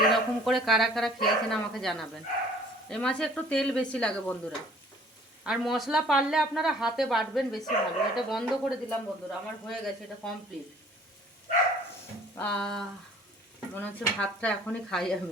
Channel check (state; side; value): normal; both; correlation 0.53